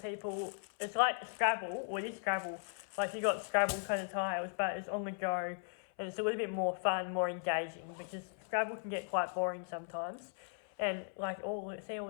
It's like Scrabble, or it is Scrabble. Like, you got Scrabble kind of tiles, but it's on the go, and it's a little bit more fun, more engaging, because Scrabble can get quite boring sometimes. And like all these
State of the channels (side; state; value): right; silent; 53 dB below the other